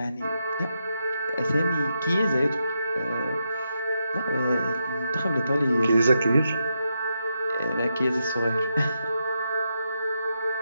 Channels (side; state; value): both; inverted; correlation -0.84